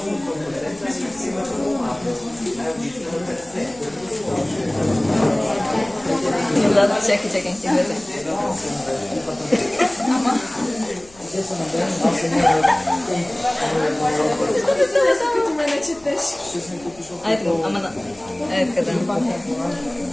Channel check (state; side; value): noise; left; hum, 25 dB below the sound